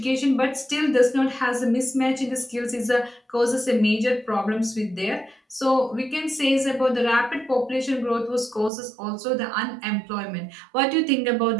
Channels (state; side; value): drops out; left; at 8.7 s